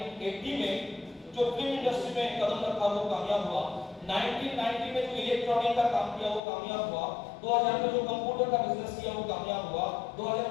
में जो फिल्म इंडस्ट्री में कदम रखा वो कामयाब हुआ। 1990 में जो इलेक्ट्रॉनिक का काम किया वो कामयाब हुआ। 2000 में जो कंप्यूटर का बिजनेस किया वो कामयाब हुआ।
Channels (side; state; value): right; drops out; at 6.4 s